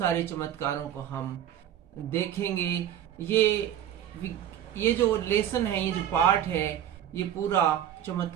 चमत्कारों को हम देखेंगे। ये जो लेसन है, ये जो पाठ है, ये पूरा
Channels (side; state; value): left; quieter; 10.6 dB